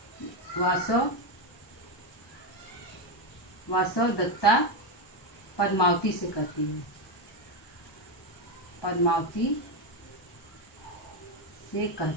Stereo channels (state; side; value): late; right; 1.2 ms